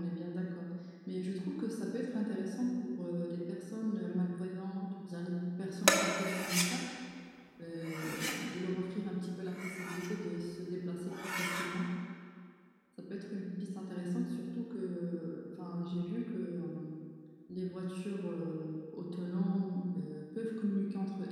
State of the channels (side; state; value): both; identical; correlation 1.00